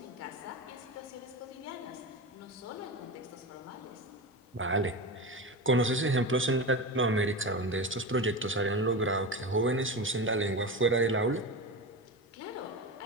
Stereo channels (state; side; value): normal; both; correlation 0.23